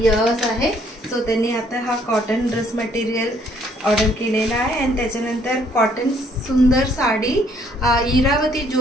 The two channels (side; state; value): both; normal; correlation 0.65